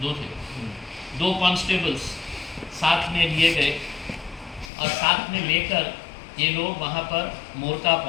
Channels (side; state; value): right; drops out; at 4.7 s